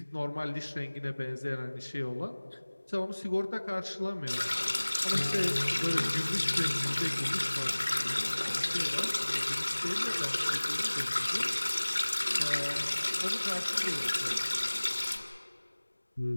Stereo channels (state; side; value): inverted; both; correlation -1.00